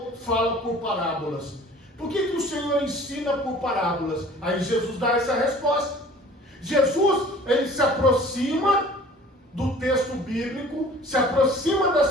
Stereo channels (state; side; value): normal; both; correlation 0.48